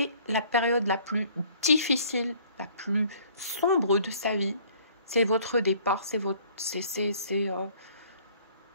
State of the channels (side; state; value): both; inverted; correlation -0.57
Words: la période la plus difficile, la plus sombre de sa vie. C'est votre départ, c'est